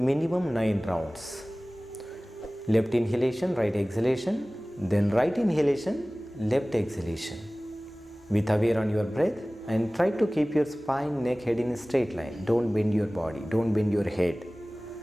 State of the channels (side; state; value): both; normal; correlation 0.98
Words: 9 rounds. Left inhalation, right exhalation, then right inhalation, left exhalation. With aware on your breath and try to keep your spine, neck, head in a straight line. Don't bend your body, don't bend your head.